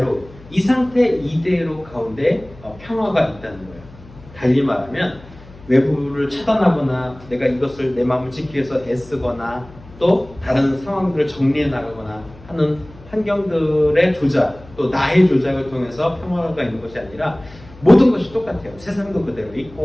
이 상태 이대로 가운데 평화가 있다는 거예요. 달리 말하면 외부를 차단하거나 내가 이것을 내 마음을 지키기 위해서 애쓰거나 또 다른 상황들을 정리해 나가거나 하는 환경들의 조작, 또 나의 조작을 통해서 평화가 있는 것이 아니라 모든 것이 똑같아요. 세상도 그대로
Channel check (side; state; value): left; noise; hum, 21 dB below the sound